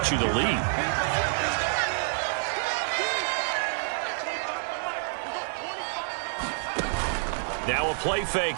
you the lead. Now a play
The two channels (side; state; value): left; silent; digital silence